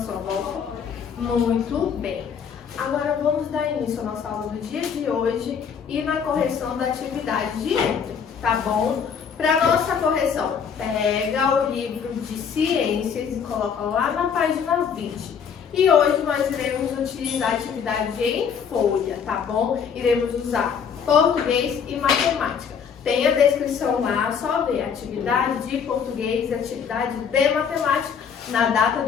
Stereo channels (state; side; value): quieter; right; 7.0 dB